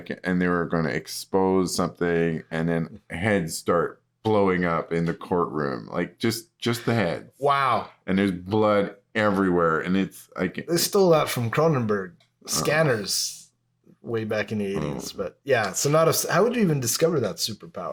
and they were going to expose something, and then heads start blowing up in the courtroom, like just the heads. Wow. And there's blood everywhere, and it's like they stole that from Cronenberg Scanners way back in the 80s. But yeah, so how would you even discover that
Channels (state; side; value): identical; both; correlation 1.00